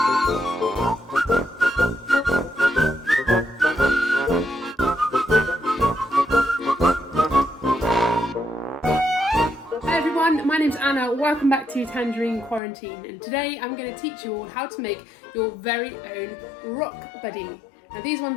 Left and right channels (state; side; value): drops out; right; at 12.6 s